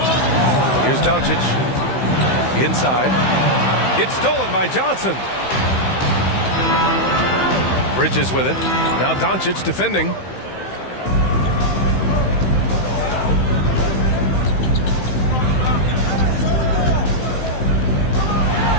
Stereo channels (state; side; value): late; right; 15 ms